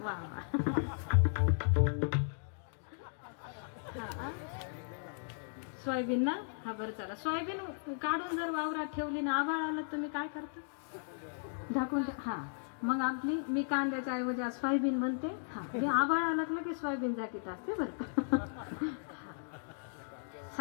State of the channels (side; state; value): right; silent; digital silence